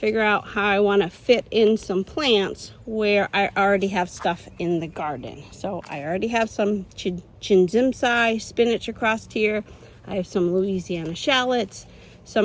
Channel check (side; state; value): both; identical; correlation 1.00